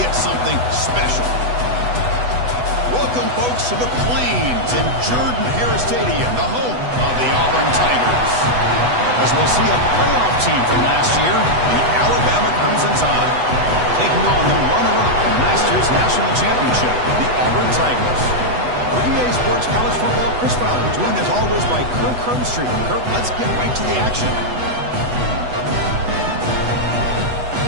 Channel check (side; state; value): left; late; 8.1 ms